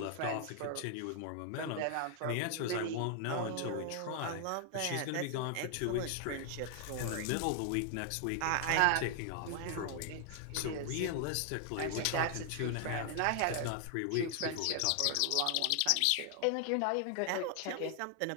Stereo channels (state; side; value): different; both; correlation 0.00